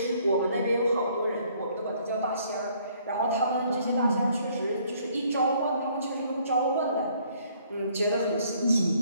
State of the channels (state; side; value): inverted; both; correlation -0.63